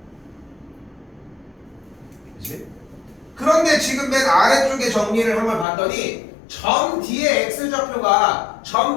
그치? 그런데 지금 맨 아래쪽에 정리를 한번 봤더니 점 D의 X좌표가 점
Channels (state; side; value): drops out; right; at 5.7 s